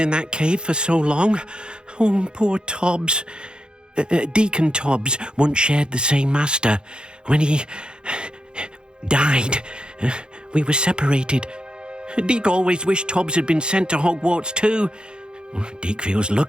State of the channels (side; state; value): left; late; 0.049 ms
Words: that cave for so long. Oh, poor Tobbs. Deke and Tobbs once shared the same master. When he died, we were separated. Deke always wished Tobbs had been sent to Hogwarts too. Deke feels